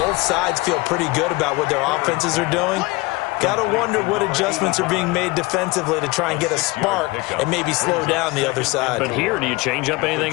sides feel pretty good about what their offenses are doing. Got to wonder what adjustments are being made defensively to try and get a spark and maybe slow down the other side. But here, do you change up anything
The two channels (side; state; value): right; quieter; 23.0 dB